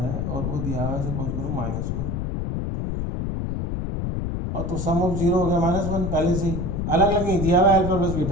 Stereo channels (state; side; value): noise; left; rumble, 2 dB below the sound